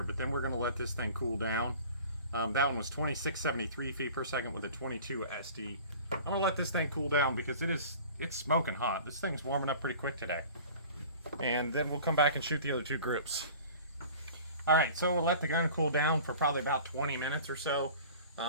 but then we're going to let this thing cool down. That one was 2673 feet per second with a 22 SD. I'm going to let this thing cool down because it's smoking hot. This thing's warming up pretty quick today. And then we'll come back and shoot the other two groups. Alright, so we'll let the gun cool down for probably about 20 minutes or so.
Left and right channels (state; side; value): inverted; both; correlation -0.43